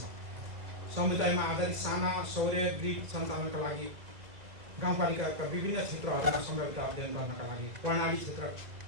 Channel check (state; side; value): late; left; 2.0 ms